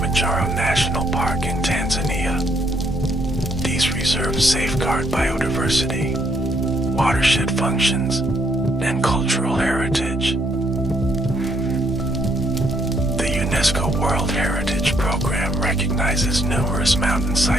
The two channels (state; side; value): normal; both; correlation 0.71